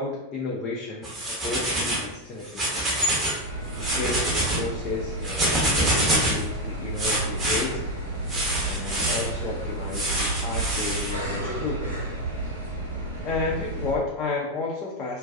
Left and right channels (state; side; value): normal; both; correlation 0.06